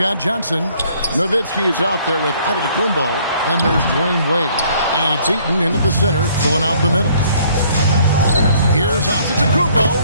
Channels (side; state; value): both; inverted; correlation -0.61